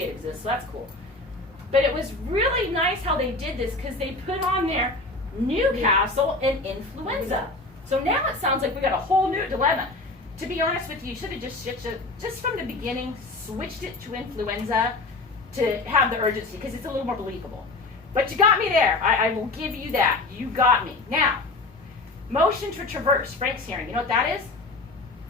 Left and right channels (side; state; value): right; quieter; 3.2 dB